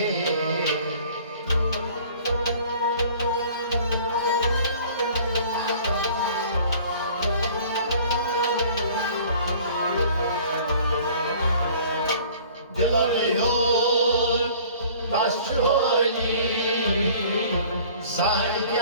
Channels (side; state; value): both; inverted; correlation -0.50